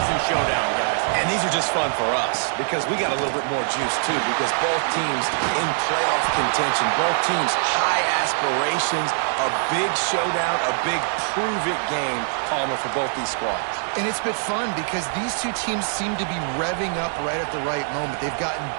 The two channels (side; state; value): left; silent; digital silence